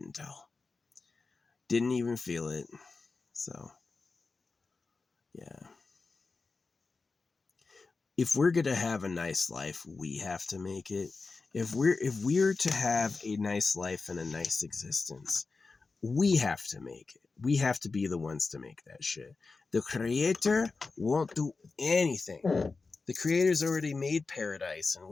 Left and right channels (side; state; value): right; quieter; 4.1 dB